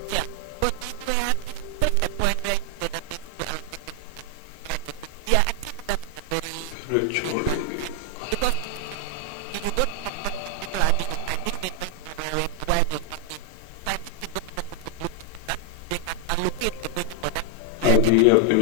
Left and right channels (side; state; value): both; different; correlation 0.01